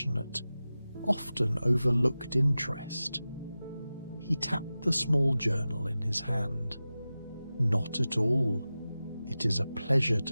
often overlooked interest. He tapped the small journal in his hand. "Not at all. It is a pleasure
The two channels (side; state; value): both; inverted; correlation -0.95